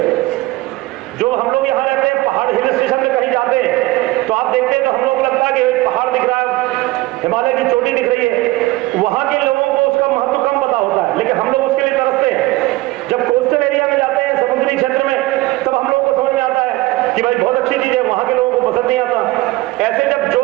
जो हम लोग यहाँ रहते हैं, पहाड़ हिल स्टेशन में कहीं जाते हैं तो आप देखते हैं तो हम लोग को लगता है कि पहाड़ दिख रहा है, हिमालय की चोटी दिख रही है। वहां के लोगों को उसका महत्व कम पता होता है, लेकिन हम लोग उसके लिए तरसते हैं। जब कोस्टल एरिया में जाते हैं, समुद्री क्षेत्र में, तब हम लोगों को समझ में आता है कि भाई बहुत अच्छी चीज है, वहां के लोगों को पसंद नहीं आता। ऐसे जब जो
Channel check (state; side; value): quieter; left; 19.9 dB